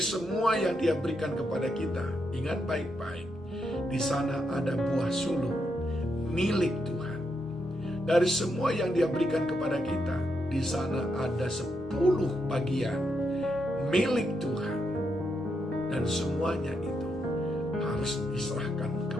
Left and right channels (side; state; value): both; normal; correlation 0.81